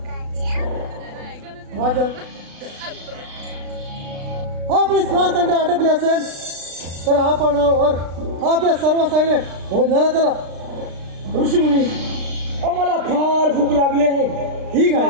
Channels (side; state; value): left; late; 36 ms